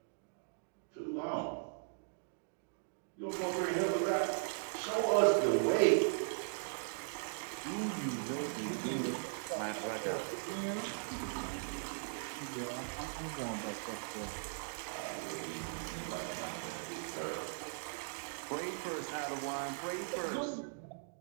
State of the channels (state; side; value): silent; left; digital silence